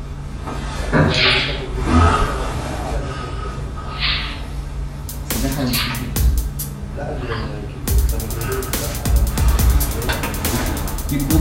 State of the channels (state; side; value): identical; both; correlation 1.00